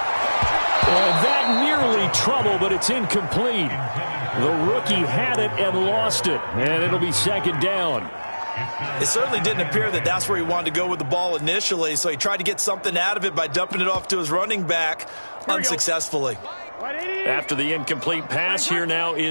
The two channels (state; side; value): inverted; both; correlation -1.00